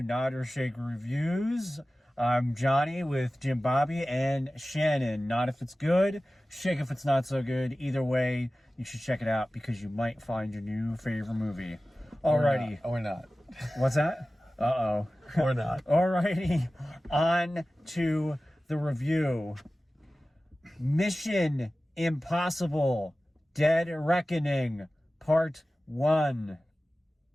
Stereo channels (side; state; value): both; normal; correlation 0.96